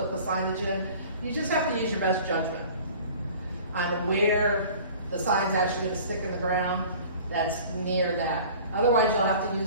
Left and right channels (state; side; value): inverted; both; correlation -0.45